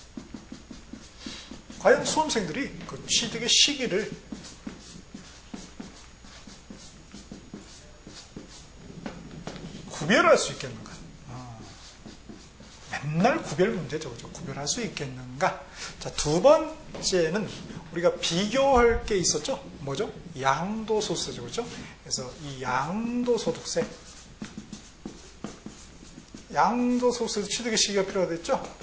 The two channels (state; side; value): identical; both; correlation 1.00